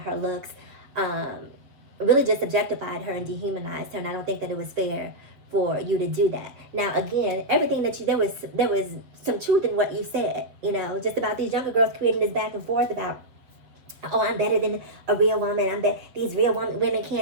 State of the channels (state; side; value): late; left; 7.2 ms